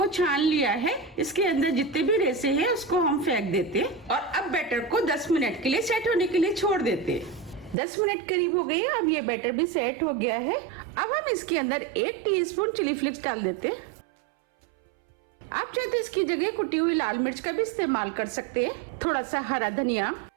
छान लिया है। इसके अंदर जितने भी रेसे हैं उसको हम फेंक देते हैं और अब बैटर को 10 मिनट के लिए सेट होने के लिए छोड़ देते हैं। 10 मिनट करीब हो गई। अब ये बैटर भी सेट हो गया है। अब हम इसके अंदर 1 टीस्पून चिली फ्लेक्स डाल देते हैं। आप चाहे तो इसकी जगह कुटी हुई लाल मिर्च का भी इस्तेमाल कर सकते हैं। थोड़ा सा हरा धनिया।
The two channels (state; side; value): drops out; left; at 7.8 s